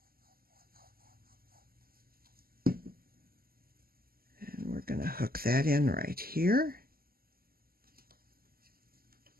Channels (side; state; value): left; late; 0.43 ms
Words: And we're going to hook that in right here.